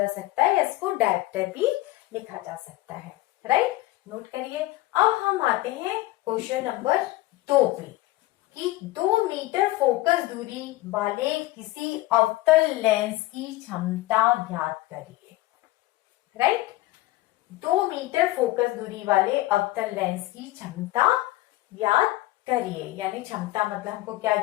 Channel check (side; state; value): right; quieter; 17.8 dB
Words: सकता है, इसको डायप्टर भी लिखा जा सकता है। राइट, नोट करिए। अब हम आते हैं क्वेश्चन नंबर 2 पे, कि 2 मीटर फोकस दूरी वाले किसी अवतल लेंस की क्षमता ज्ञात करिए। राइट, 2 मीटर फोकस दूरी वाले अवतल लेंस की क्षमता ज्ञात करिए, यानी क्षमता मतलब हमको क्या